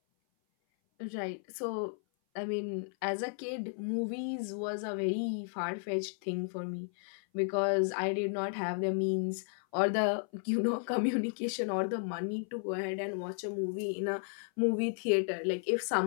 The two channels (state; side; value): silent; right; 55 dB below the other